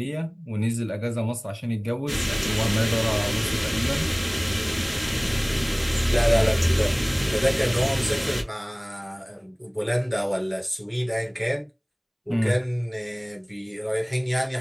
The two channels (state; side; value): identical; both; correlation 1.00